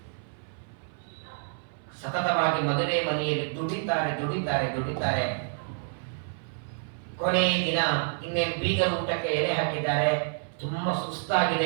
ಸತತವಾಗಿ ಮದುವೆ ಮನೆಯಲ್ಲಿ ದುಡಿತಾರೆ. ಕೊನೆ ದಿನ ಇನ್ನೇನು ಬೀಗ ಊಟಕ್ಕೆ ಎಲೆ ಹಾಕಿದ್ದಾರೆ. ತುಂಬಾ ಸುಸ್ತಾಗಿದೆ.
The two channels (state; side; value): silent; left; 58 dB below the other